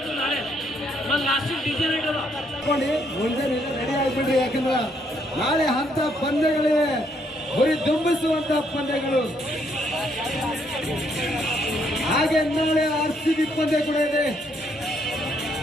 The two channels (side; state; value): both; normal; correlation 0.71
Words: ನಾಳೆ last DJ night ಅದ ಮುಂದೆ ರೆಡಿ ಆಗ್ಬಿಡ್ರಿ. ಯಾಕಂದ್ರ ನಾಳೆ ಹಂತ ಪಂದ್ಯಗಳಿವೆ, ಗುರಿ ದುಂಬಿಸುವಂತ ಪಂದ್ಯಗಳು. ಹಾಗೆ ನಾಳೆ RCB ಪಂದ್ಯ ಕೂಡ ಇದೆ.